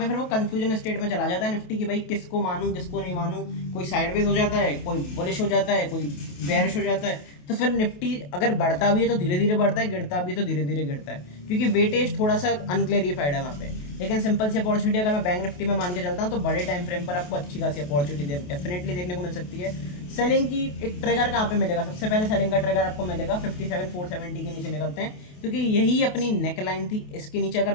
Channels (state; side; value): late; right; 28 ms